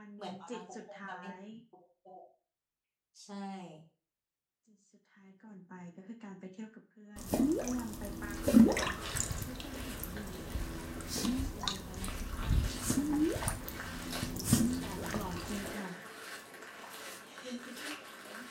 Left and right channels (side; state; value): both; identical; correlation 1.00